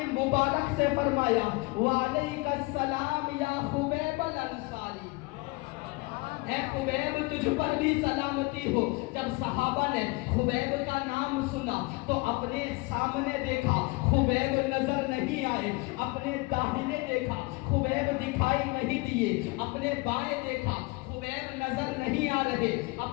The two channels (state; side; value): quieter; right; 25.2 dB